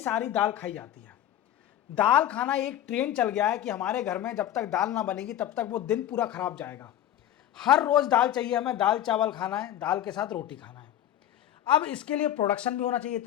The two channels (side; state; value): right; quieter; 11.7 dB